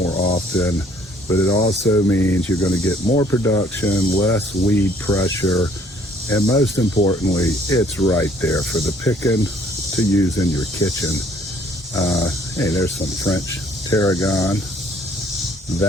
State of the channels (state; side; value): normal; both; correlation 0.61